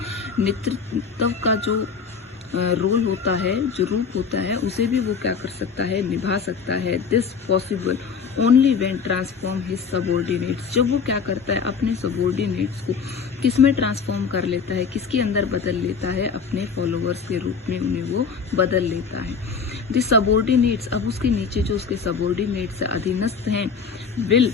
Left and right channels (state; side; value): quieter; right; 5.7 dB